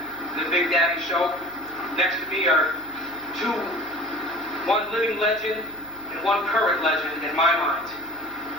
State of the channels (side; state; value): right; noise; hum, 22 dB below the sound